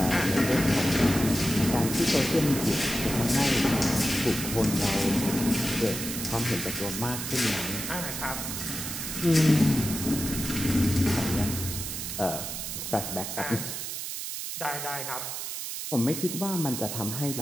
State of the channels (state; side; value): noise; right; hiss, 5 dB below the sound